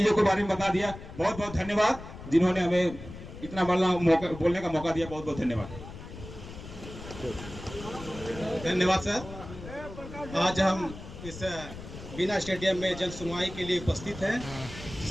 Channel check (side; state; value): left; noise; rumble, 13 dB below the sound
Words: के बारे में बता दिया। बहुत बहुत धन्यवाद जिन्होंने हमें इतना बोलने का मौका दिया। बहुत बहुत धन्यवाद। धन्यवाद सर। आज हम इस बीना स्टेडियम में जन सुनवाई के लिए उपस्थित हैं,